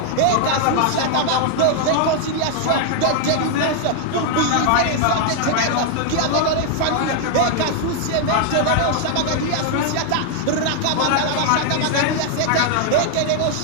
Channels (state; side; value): different; both; correlation 0.00